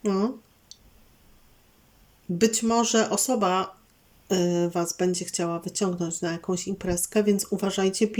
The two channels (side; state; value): both; identical; correlation 1.00